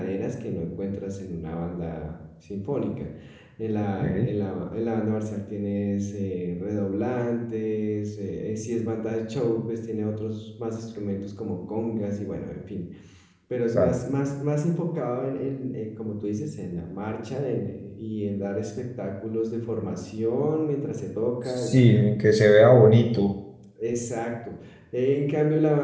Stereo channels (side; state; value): both; identical; correlation 1.00